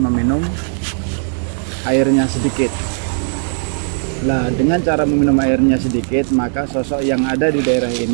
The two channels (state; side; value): silent; left; 68 dB below the other